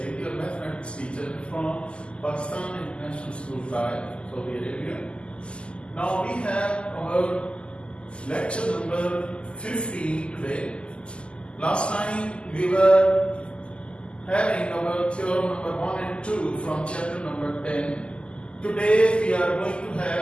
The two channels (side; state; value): right; late; 0.052 ms